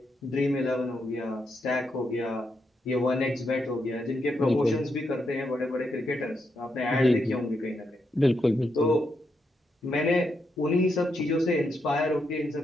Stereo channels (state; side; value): normal; both; correlation 0.82